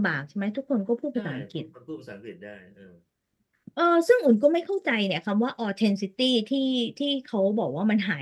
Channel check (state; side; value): identical; both; correlation 1.00